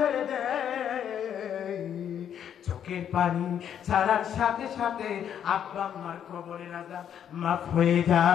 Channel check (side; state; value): right; quieter; 9.2 dB